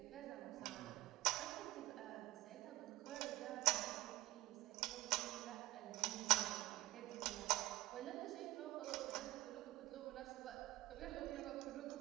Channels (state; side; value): quieter; left; 18.3 dB